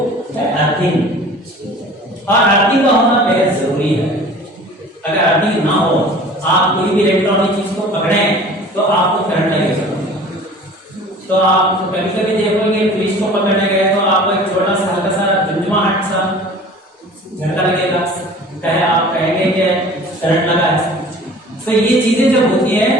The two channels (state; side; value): normal; both; correlation 0.45